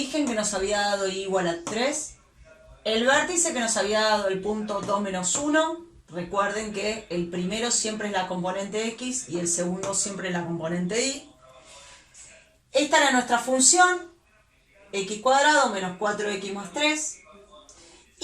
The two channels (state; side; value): identical; both; correlation 1.00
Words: que nos había dado y igual a 3, el vértice que nos había dado el punto 2 menos 1, recuerden que el primero siempre es la componente x y el segundo siempre es la componente y. Esta era nuestra función, x cuadrado menos 4x más 3,